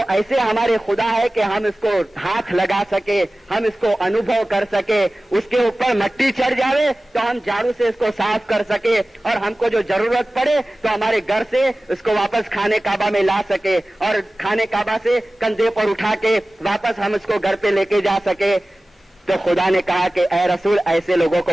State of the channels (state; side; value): normal; both; correlation 0.97